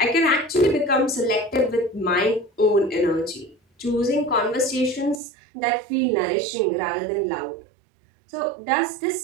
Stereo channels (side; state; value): left; drops out; at 5.2 s